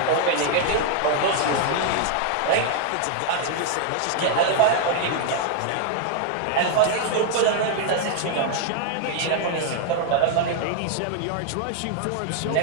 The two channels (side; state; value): both; different; correlation 0.00